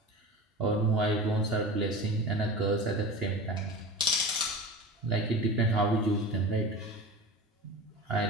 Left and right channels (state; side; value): normal; both; correlation 0.31